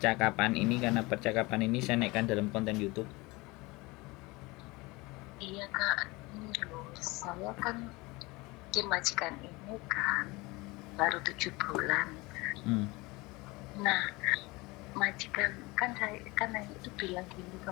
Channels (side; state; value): right; quieter; 23.4 dB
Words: ini karena percakapan ini saya naikkan dalam konten YouTube. Iya Kak, ini loh, saya kan di majikan ini kan baru 7 bulan. Nah, majikan saya itu bilang gini ke